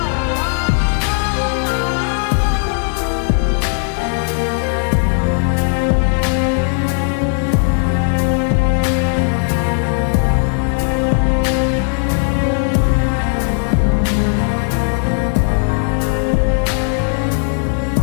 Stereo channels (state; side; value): silent; right; 55 dB below the other